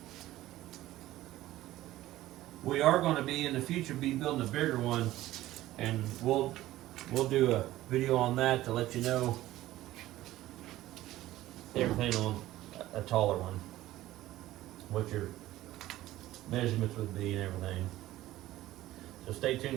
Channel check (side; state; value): left; quieter; 15.5 dB